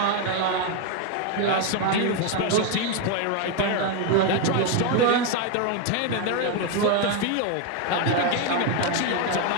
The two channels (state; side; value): different; both; correlation 0.01